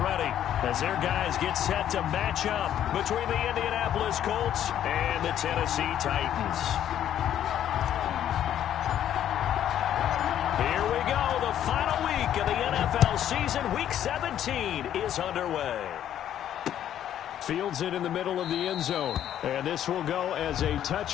as their guys get set to match up between the Indianapolis Colts and the Tennessee Titans. Here we go. The final week of the NFL season, Week 17, is underway. Fields it in the middle of the end zone. And this will go as a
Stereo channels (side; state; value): right; quieter; 10.7 dB